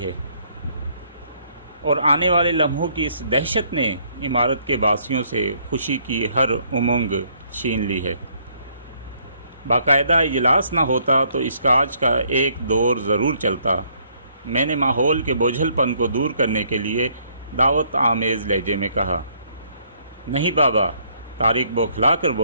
ہے، اور آنے والے لمحوں کی اس دہشت نے عمارت کے باسیوں سے خوشی کی ہر امنگ چھین لی ہے۔ باقاعدہ اجلاس نہ ہوتا تو اس کاج کا ایک دور ضرور چلتا۔ میں نے ماحول کے بوجھل پن کو دور کرنے کے لیے دعوت آمیز لہجے میں کہا۔ نہیں بابا، طارق بوکھلا کر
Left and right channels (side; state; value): both; inverted; correlation -0.67